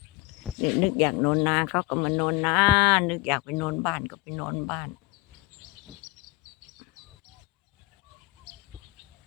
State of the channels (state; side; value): quieter; right; 21.3 dB